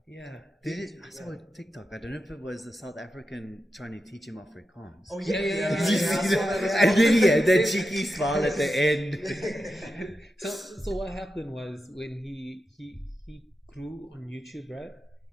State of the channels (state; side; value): normal; both; correlation 0.89